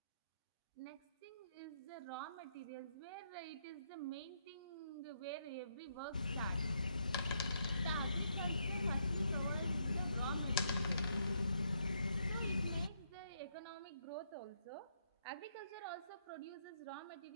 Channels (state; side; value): inverted; both; correlation -0.76